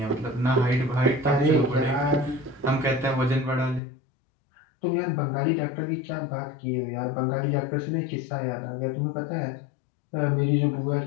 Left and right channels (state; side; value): drops out; right; at 3.8 s